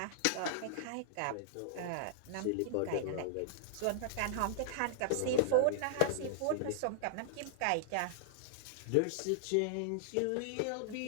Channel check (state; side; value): different; both; correlation -0.01